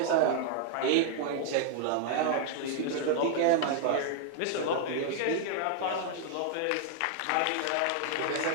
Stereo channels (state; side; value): different; both; correlation 0.00